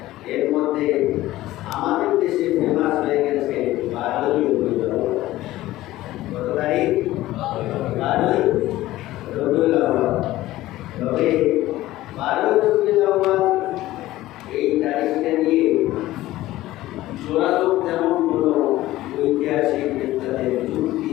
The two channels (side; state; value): right; quieter; 16.1 dB